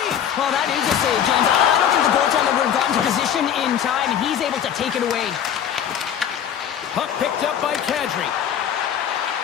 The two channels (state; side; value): quieter; right; 9.2 dB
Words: Well, that is a save, James. I don't think the goaltender would have gotten to position in time, and he's able to take it away. Puck picked up by Kadri.